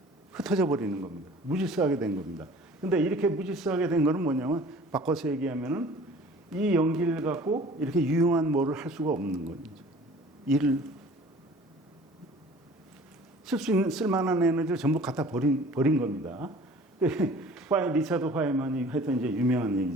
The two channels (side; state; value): both; normal; correlation 0.47